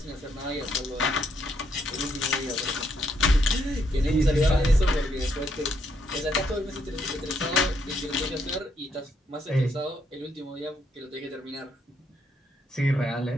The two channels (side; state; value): both; normal; correlation 0.74